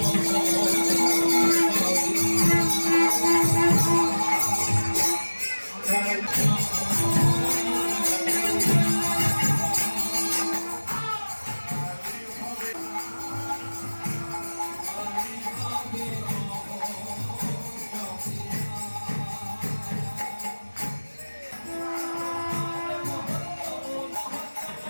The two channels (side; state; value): both; inverted; correlation -1.00